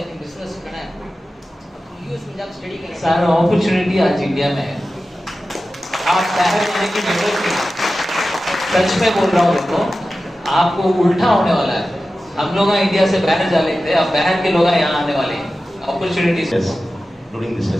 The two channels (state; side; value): normal; both; correlation 0.94